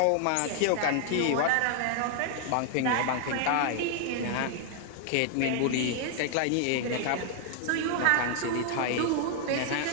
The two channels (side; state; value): both; different; correlation 0.00